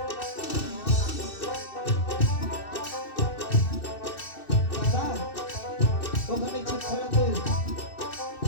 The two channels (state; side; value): late; right; 2.6 ms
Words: ওখানে চুপ করা তুই